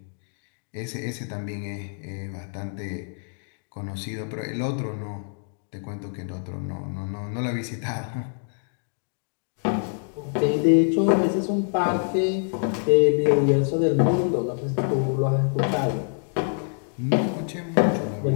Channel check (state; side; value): silent; right; 61 dB below the other